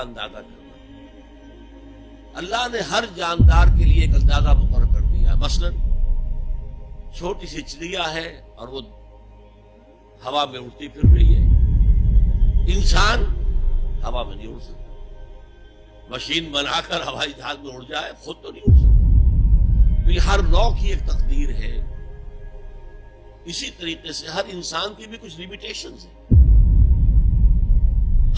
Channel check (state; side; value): identical; both; correlation 1.00